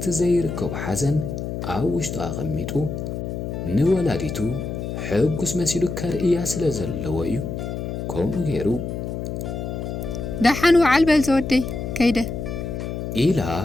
ዘይርከቡ ሓዘን ኣብ ውሽጡ ኣቐሚጡ ንወላዲቱ ሕጉስ መሲሉ ከርእያ ስለ ዘለዎ እዩ ከምኡ ገይሩ ዳሓን ወዓል በል ዘወደይ ከይደ ኢላ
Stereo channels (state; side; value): noise; left; hum, 5 dB below the sound